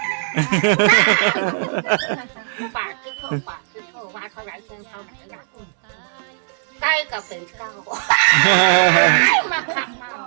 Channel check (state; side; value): silent; left; digital silence